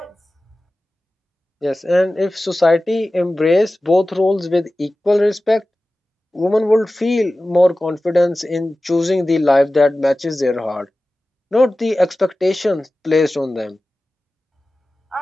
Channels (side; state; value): both; normal; correlation 0.96